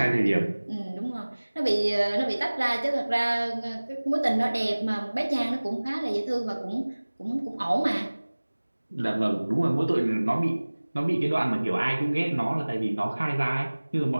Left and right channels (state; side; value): inverted; both; correlation -1.00